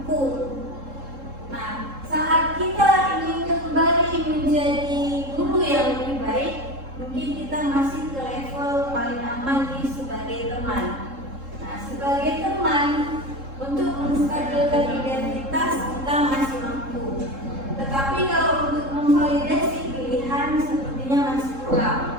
guru. Nah, saat kita ingin kembali menjadi guru yang lebih baik, mungkin kita masih ke level paling aman di sebagai teman. Nah, sebagai teman, untuk menstabilkan identitas kita masih mampu. Tetapi kalau untuk memvalidasi pilihan sepertinya masih kurang.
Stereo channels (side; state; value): left; late; 3.7 ms